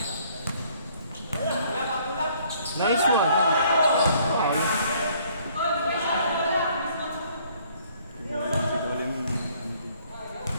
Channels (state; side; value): inverted; both; correlation -0.62